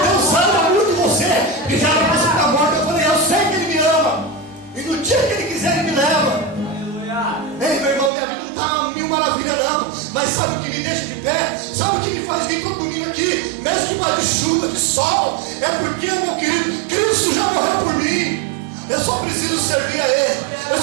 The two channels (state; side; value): drops out; left; at 8.1 s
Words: Deus ama muito você, que já era para você estar morto